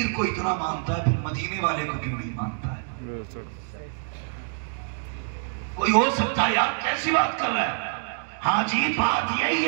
को इतना मानता है, फिर मदीने वाले को क्यों नहीं मानता है? कोई हो सकता है यार, कैसी बात कर रहा है? हाँ जी, बात यही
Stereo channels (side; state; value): left; silent; digital silence